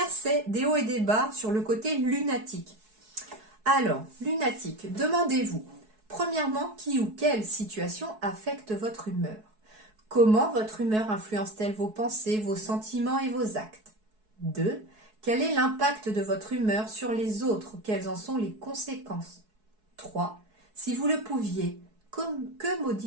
c'est des hauts et des bas sur le côté lunatique. Alors, lunatique, demandez-vous, premièrement, qui ou quelle situation affecte votre humeur? Comment votre humeur influence-t-elle vos pensées, vos sentiments et vos actes? 2. Quel est l'impact de votre humeur sur les autres? Quelles en sont les conséquences? 3. Si vous le pouviez, que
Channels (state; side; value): late; left; 4.7 ms